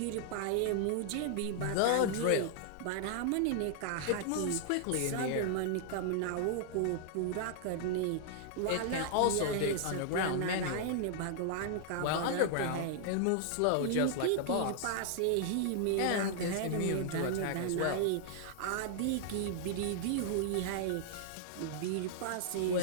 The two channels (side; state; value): both; different; correlation -0.01